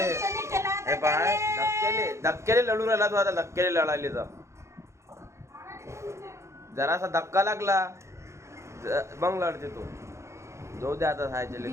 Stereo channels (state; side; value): late; left; 0.14 ms